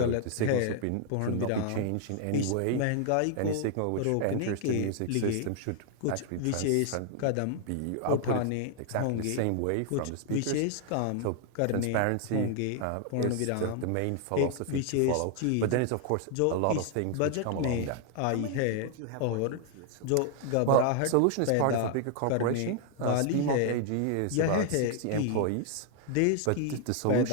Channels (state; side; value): different; both; correlation 0.00